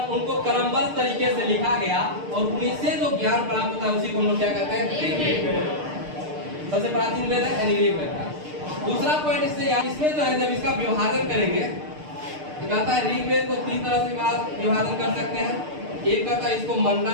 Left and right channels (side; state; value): left; late; 6.6 ms